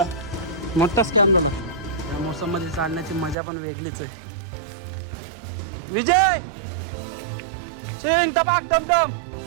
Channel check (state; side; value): drops out; left; at 3.4 s